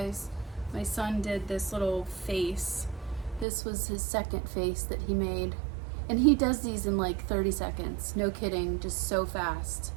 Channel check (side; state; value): left; drops out; at 3.5 s